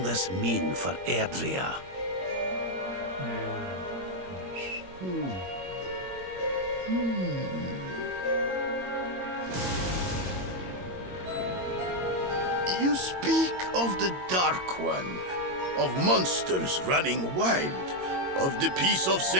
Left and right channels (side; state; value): left; late; 22 ms